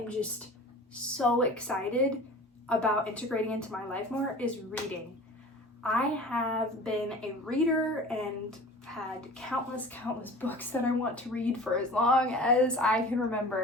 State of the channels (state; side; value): normal; both; correlation 0.40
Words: just so excited about integrating into my life more is reading. I have been a reader and had countless books that I want to read for as long as I can